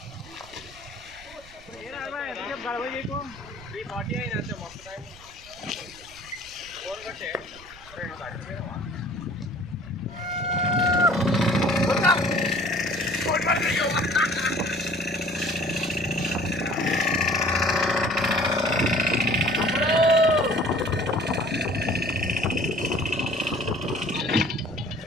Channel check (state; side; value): noise; right; rumble, 22 dB below the sound